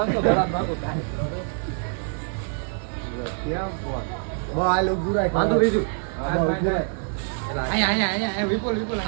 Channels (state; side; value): silent; left; 62 dB below the other